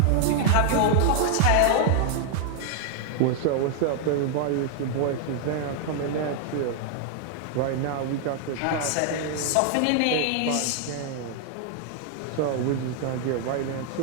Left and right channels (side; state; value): both; different; correlation 0.00